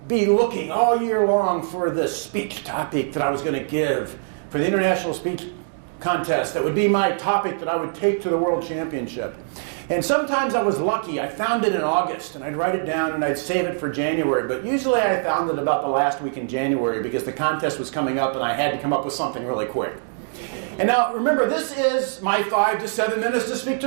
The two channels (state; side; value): silent; left; digital silence